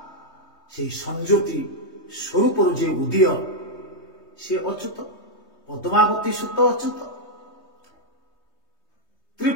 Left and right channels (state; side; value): late; right; 3.2 ms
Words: से संज्योति स्वरूप जे उदय से अच्युत पद्मावती सुत अच्युत